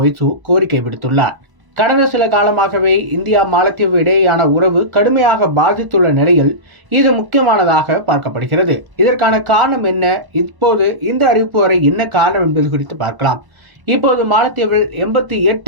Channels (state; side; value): late; left; 1.0 ms